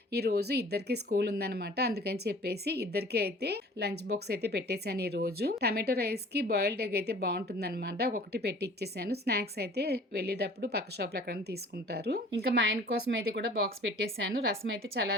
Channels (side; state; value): both; normal; correlation 0.48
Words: ఈరోజు ఇద్దరికి స్కూల్ ఉందనమాట, అందుకని చెప్పేసి ఇద్దరికి అయితే లంచ్ బాక్స్ అయితే పెట్టేశాను. ఈరోజు టమాటో రైస్కి బాయిల్డ్ ఎగ్ అయితే బాగుంటుందన్నమాట. ఒకటి పెట్టి ఇచ్చేసాను. స్నాక్స్ అయితే వెళ్ళేటప్పుడు పక్క షాప్లో ఎక్కడైనా తీసుకుంటారు. ఇంకా మా ఆయన కోసం అయితే కూడా బాక్స్ పెట్టేశాను. రసం అయితే